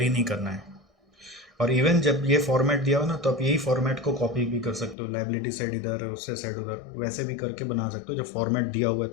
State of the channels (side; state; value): right; drops out; at 5.0 s